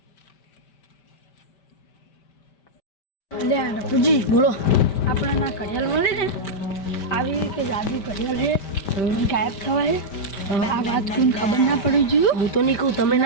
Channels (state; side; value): late; right; 5.1 ms